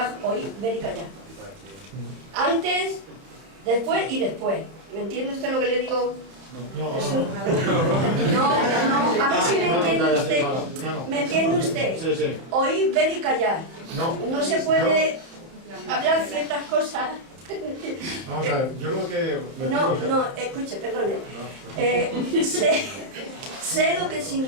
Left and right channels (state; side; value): late; left; 31 ms